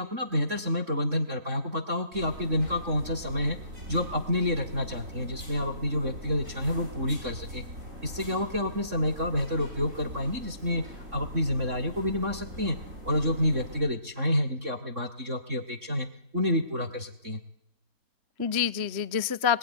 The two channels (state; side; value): late; left; 3.6 ms